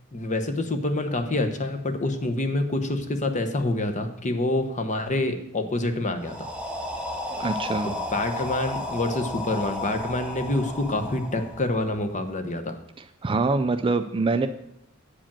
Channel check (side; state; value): both; normal; correlation 0.46